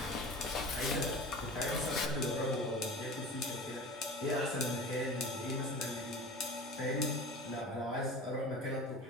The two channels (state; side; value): normal; both; correlation 0.35